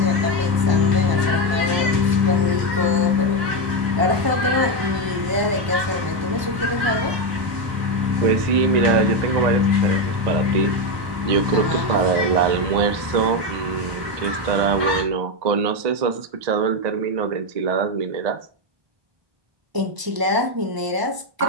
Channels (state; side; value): late; left; 1.0 ms